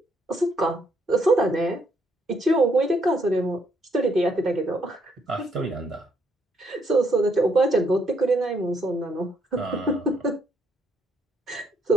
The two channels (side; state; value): both; normal; correlation 0.72